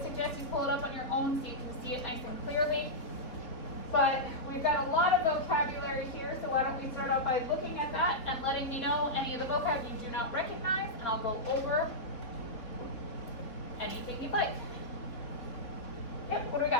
suggest you pull it up on your own so you can see it nice and clearly. But we've got a lot of vocabulary here, so why don't we start out by looking at that and letting me know any of the vocab you do not recognize, and I'll go over anything you'd like. Yep, what do we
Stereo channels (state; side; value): late; right; 3.9 ms